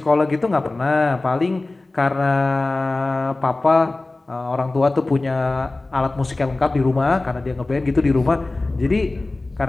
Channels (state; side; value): quieter; right; 3.1 dB